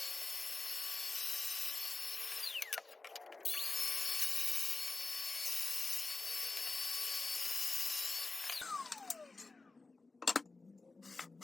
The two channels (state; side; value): quieter; right; 3.7 dB